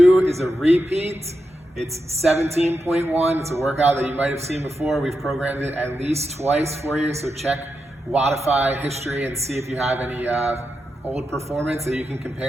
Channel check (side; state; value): both; normal; correlation 0.87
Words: is a repeat. It's 17.1. It's a workout that you might have seen before. We've programmed it at least twice for you, so check Wattify history and see if you have any old performance that you can